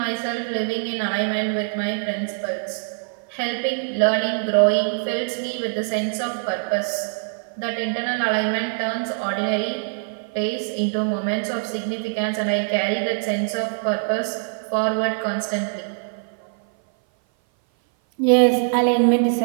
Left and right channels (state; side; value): silent; left; 57 dB below the other